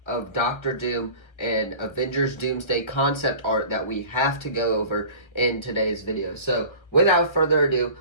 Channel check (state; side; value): late; right; 1.5 ms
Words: of Doctor Doom and Avengers Doomsday concept art that we have to go over in today's video. So without further ado,